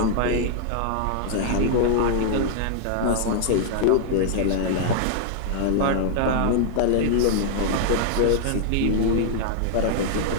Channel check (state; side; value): different; both; correlation -0.01